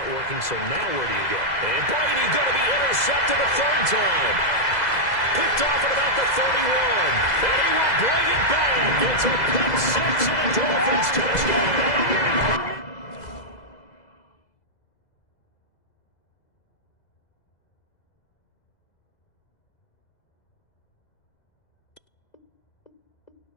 working, so now where do you go? And Brady going to be intercepted a third time. Picked off at about the 31. And he will bring it back. It's a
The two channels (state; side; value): late; right; 2.0 ms